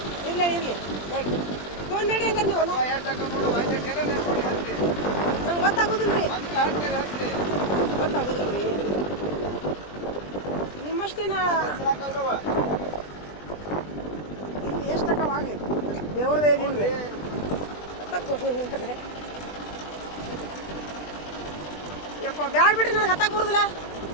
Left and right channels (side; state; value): right; late; 20 ms